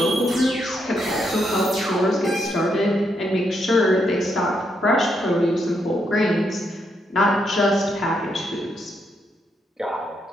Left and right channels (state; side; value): normal; both; correlation 0.78